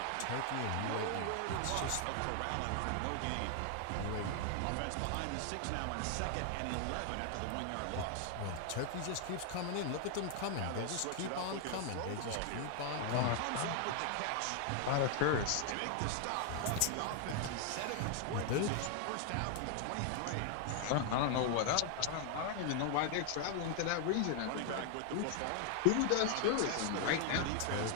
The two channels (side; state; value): both; different; correlation 0.00